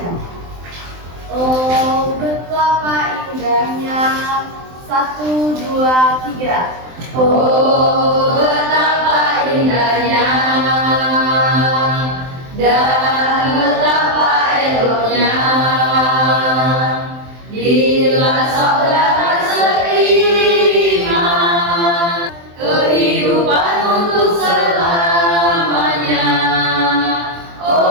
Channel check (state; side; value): late; left; 23 ms